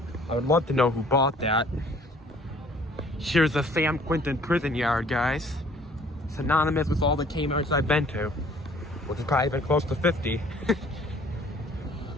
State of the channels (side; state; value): both; normal; correlation 0.55